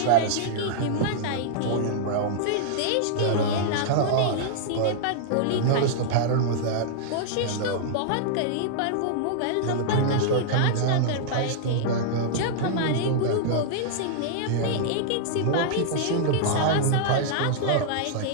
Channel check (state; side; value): different; both; correlation -0.01